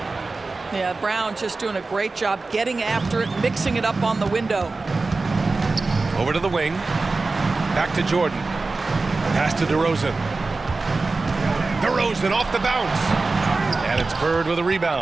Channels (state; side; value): quieter; left; 3.7 dB